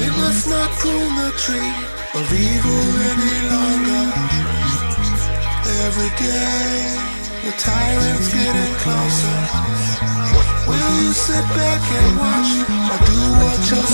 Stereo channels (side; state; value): both; inverted; correlation -1.00